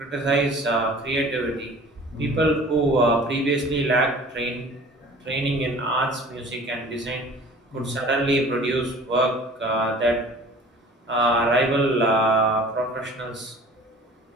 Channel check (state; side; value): normal; both; correlation 0.46